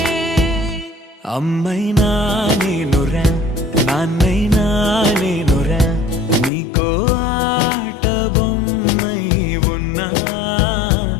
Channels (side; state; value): right; drops out; at 6.5 s